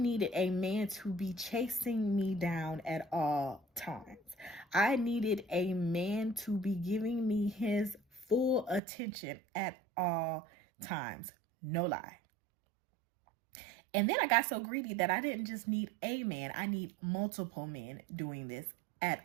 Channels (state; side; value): drops out; left; at 8.8 s